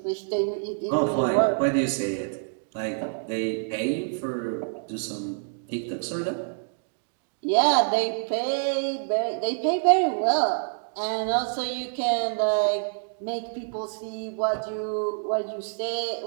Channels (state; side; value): silent; left; digital silence